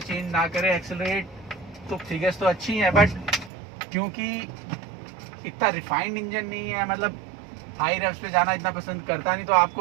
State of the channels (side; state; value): left; drops out; at 3.5 s